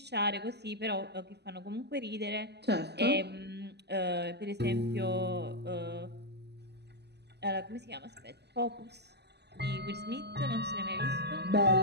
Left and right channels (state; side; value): late; left; 0.49 ms